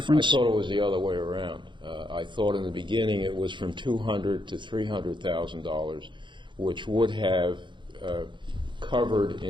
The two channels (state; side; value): late; left; 0.23 ms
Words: thought it was the other way around. I thought in the beginning it was from $200,000 to $300,000, which would have covered